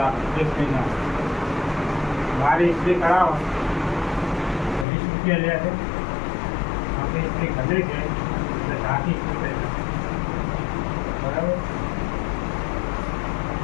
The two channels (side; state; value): right; drops out; at 4.9 s